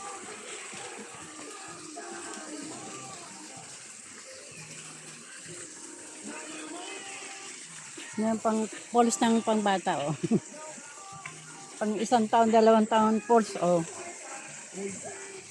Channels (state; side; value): identical; both; correlation 1.00